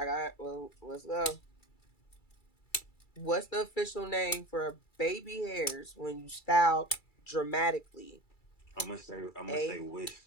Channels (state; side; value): late; right; 2.3 ms